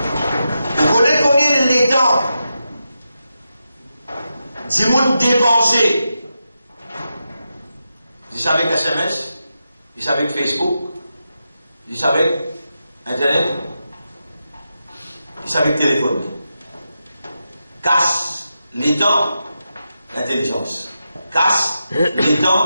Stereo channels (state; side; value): inverted; both; correlation -0.88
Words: Vous connaissez combien les temps du monde dépensé? Ils avec SMS, ils avec Facebook, ils avec Internet, ils avec téléphone. Casse les temps, l'intelligence. Casse les